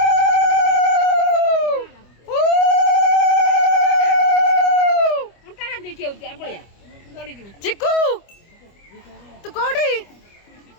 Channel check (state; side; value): late; right; 25 ms